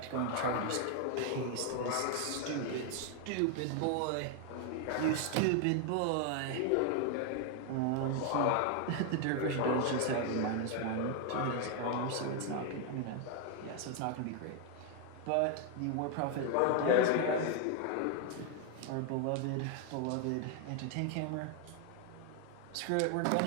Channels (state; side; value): different; both; correlation 0.00